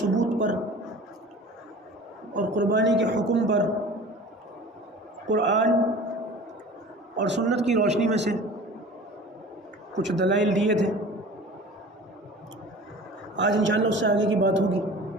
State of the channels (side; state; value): both; normal; correlation 0.41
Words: पर और कुर्बानी के हुक्म पर कुरान और सुन्नत की रोशनी में से कुछ दलाइल दिए थे। आज इंशाअल्लाह उससे आगे की बात होगी।